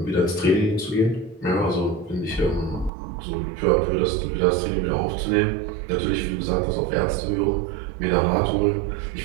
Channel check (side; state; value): left; drops out; at 2.9 s